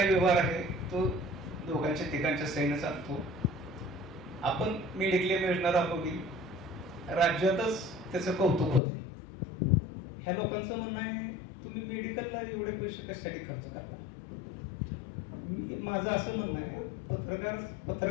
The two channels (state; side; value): drops out; right; at 8.8 s